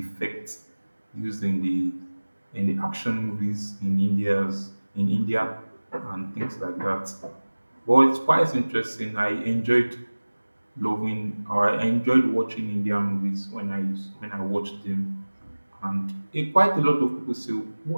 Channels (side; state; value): both; inverted; correlation -1.00